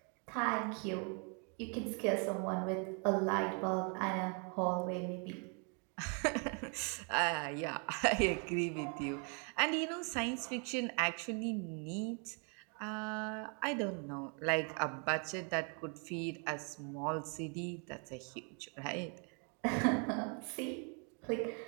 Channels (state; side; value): quieter; left; 37.8 dB